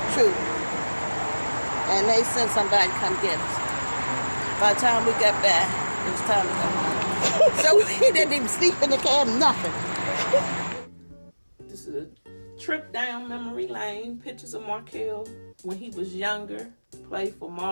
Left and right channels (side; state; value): both; inverted; correlation -1.00